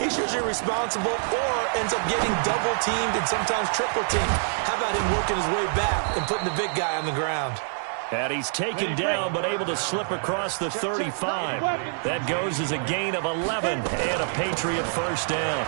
usually responsible or ends up getting double-teamed and sometimes triple-teamed. How about him working his way back and putting the big guy on the ground? And he's taken down but able to slip across the 35. That goes as a gain of 11 and a Patriot first down.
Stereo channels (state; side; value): silent; left; 61 dB below the other